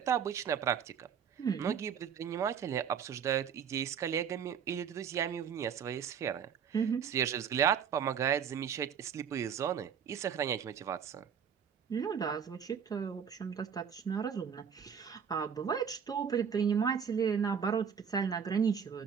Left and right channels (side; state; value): left; quieter; 7.5 dB